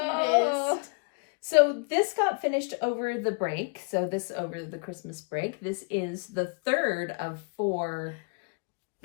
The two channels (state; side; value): quieter; right; 37.3 dB